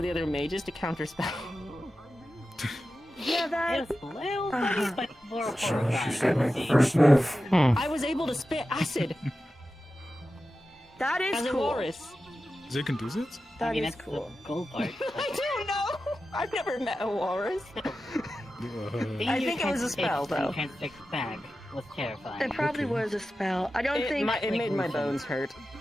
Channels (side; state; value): both; normal; correlation 0.93